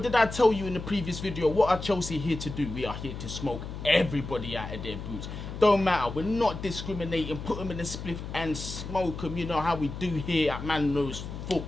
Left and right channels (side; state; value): left; noise; hum, 8 dB below the sound